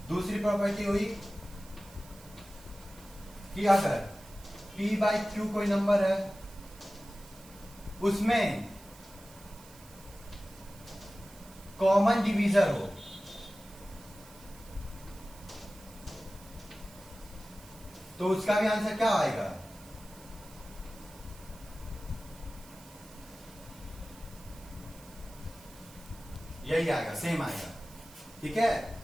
दूसरी प्रॉपर्टी हुई कि अगर P बाई Q कोई नंबर है उसमें कॉमन डिवीजर हो तो उसका भी आंसर क्या आएगा, यही आएगा, सेम आएगा। ठीक है,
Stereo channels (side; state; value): right; noise; hiss, 21 dB below the sound